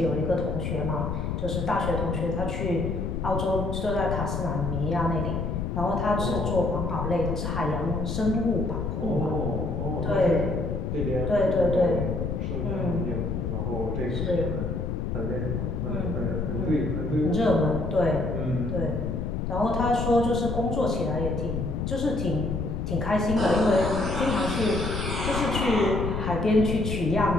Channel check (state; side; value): noise; left; rumble, 2 dB below the sound